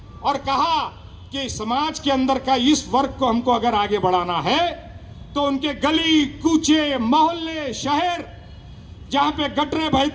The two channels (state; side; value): identical; both; correlation 1.00